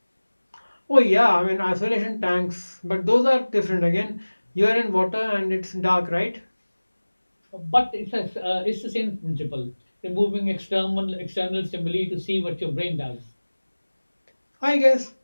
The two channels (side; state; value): both; inverted; correlation -1.00